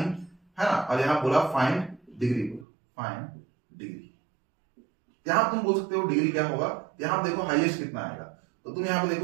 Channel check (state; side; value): drops out; left; at 2.7 s